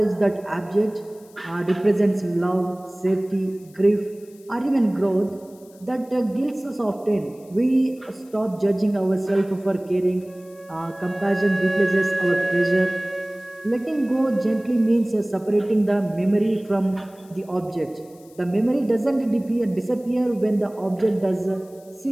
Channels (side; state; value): left; noise; hiss, 28 dB below the sound